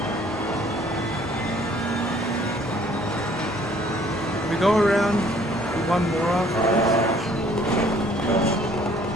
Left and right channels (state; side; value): normal; both; correlation 0.59